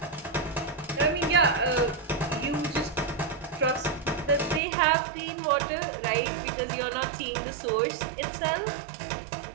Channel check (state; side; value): drops out; left; at 4.6 s